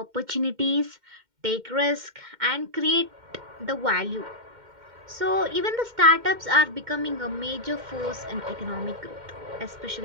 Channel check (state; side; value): late; left; 2.1 ms